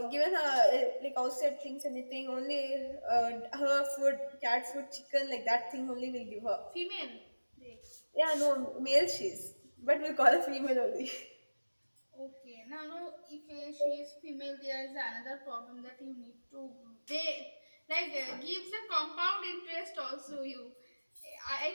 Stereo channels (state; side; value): inverted; both; correlation -1.00